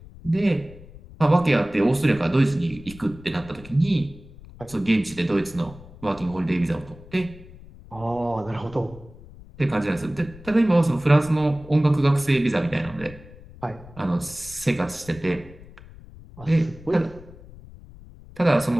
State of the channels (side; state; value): left; noise; rumble, 19 dB below the sound